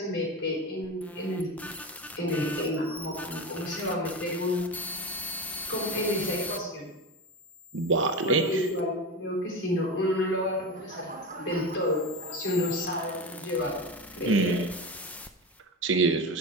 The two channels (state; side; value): normal; both; correlation 0.22